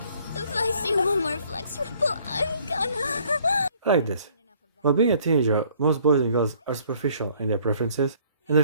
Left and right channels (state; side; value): inverted; both; correlation -0.59